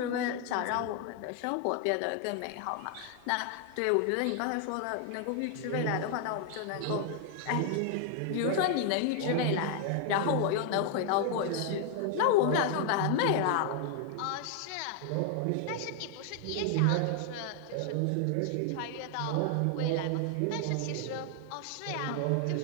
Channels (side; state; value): both; different; correlation 0.00